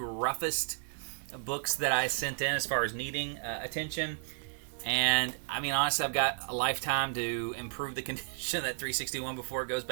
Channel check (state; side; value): silent; left; digital silence